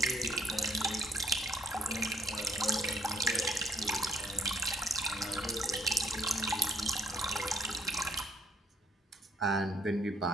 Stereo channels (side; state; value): both; normal; correlation 0.64